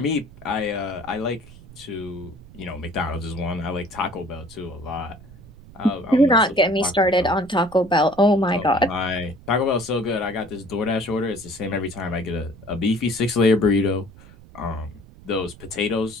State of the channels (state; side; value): noise; right; rumble, 20 dB below the sound